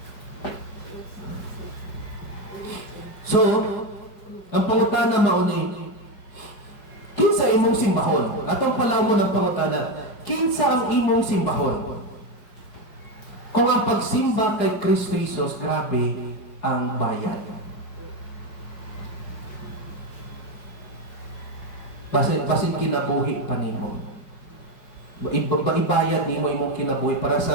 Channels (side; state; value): right; late; 5.1 ms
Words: So, ang pangutana mo ni kinsa imong simbahon. Atong palaw mo ng pangutana, kinsa ang imong simbahon. Kung ang pagsimba kay Kristo Jesus, grabe ang bayad. Basin kinabuhi pa nimo. Ibayad nimo imong kinabuhi para